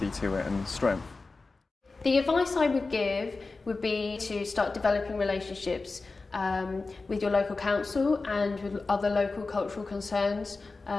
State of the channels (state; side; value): quieter; right; 3.8 dB